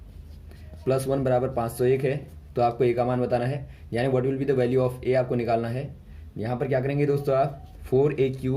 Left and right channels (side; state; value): both; identical; correlation 1.00